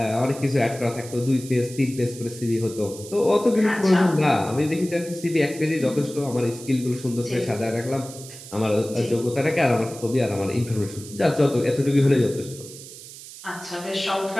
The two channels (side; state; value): right; noise; hiss, 15 dB below the sound